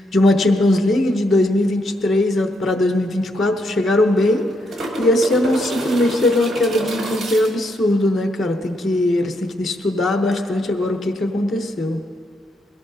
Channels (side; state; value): both; normal; correlation 0.77